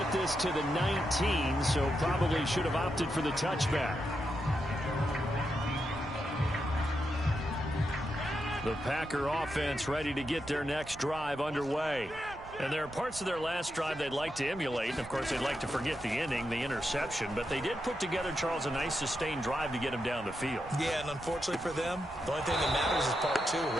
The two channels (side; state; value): right; noise; rumble, 17 dB below the sound